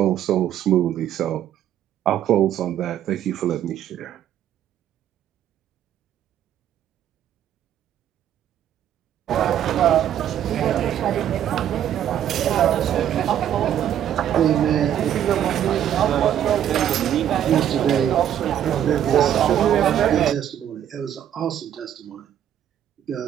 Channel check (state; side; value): quieter; left; 10.5 dB